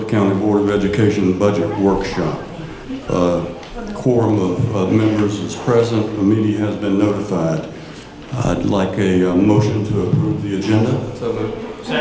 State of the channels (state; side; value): identical; both; correlation 1.00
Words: County Board of Education Budget Workshop. Quorum of members is present. The meeting has been notified. I'd like a motion to approve the agenda. So moved.